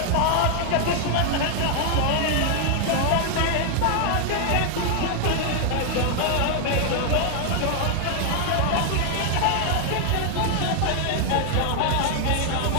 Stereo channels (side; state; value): both; different; correlation 0.00